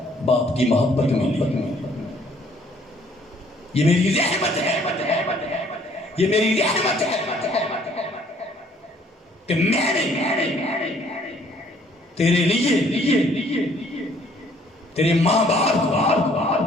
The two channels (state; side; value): normal; both; correlation 0.61